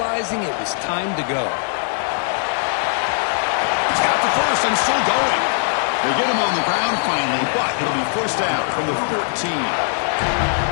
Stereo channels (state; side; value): silent; right; digital silence